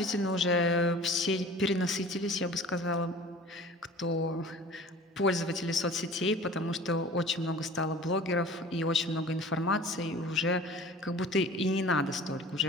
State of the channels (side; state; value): both; normal; correlation 0.43